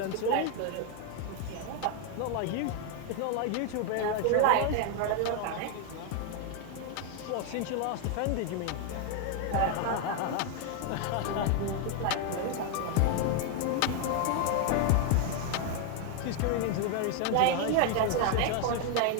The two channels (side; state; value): both; different; correlation 0.00